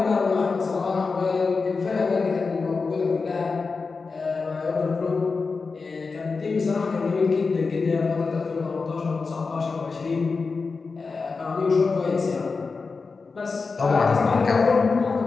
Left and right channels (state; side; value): quieter; right; 4.5 dB